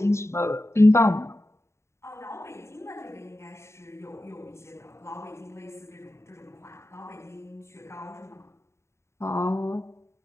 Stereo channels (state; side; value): late; right; 0.13 ms